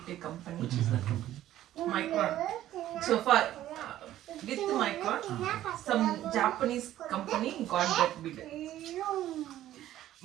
company which is that company Micron so far with Micron some Japanese company got that bid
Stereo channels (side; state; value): left; quieter; 13.2 dB